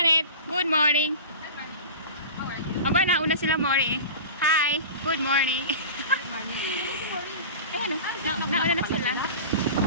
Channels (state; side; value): inverted; both; correlation -0.34